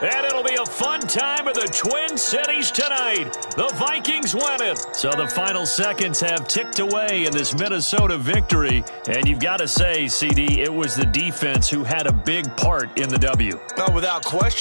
And it'll be a fun time of the Twin Cities tonight. The Vikings win it. So the final seconds have ticked away in this Minnesota victory. And you've got to say, CD, it was the defense who had a big part in the W. Well, without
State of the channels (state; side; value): inverted; both; correlation -1.00